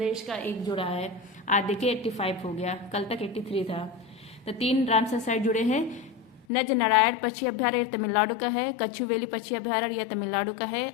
का एक जुड़ा है, आज देखिए 85 हो गया, कल तक 83 था। तो 3 रामसर साइट जुड़े हैं। नज नारायण पक्षी अभ्यारण्य तमिलनाडु का है, कछुवेली पक्षी अभ्यारण्य यह तमिलनाडु का है,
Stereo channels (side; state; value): right; drops out; at 6.5 s